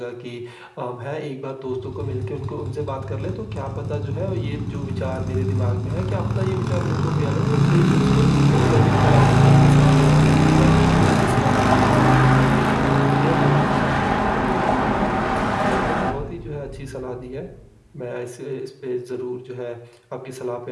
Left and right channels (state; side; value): identical; both; correlation 1.00